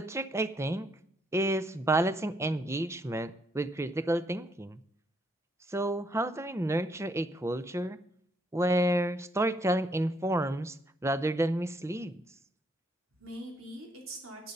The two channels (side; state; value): both; normal; correlation 0.72